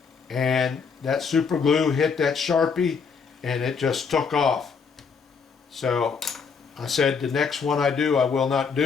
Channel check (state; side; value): quieter; right; 5.7 dB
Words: and that super glue hit that Sharpie and it just took off. So I said the next one I do, I will not